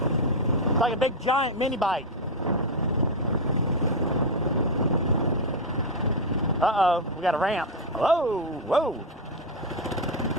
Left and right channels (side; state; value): both; normal; correlation 0.04